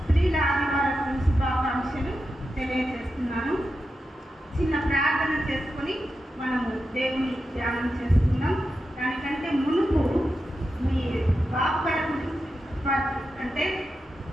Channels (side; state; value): both; normal; correlation 0.89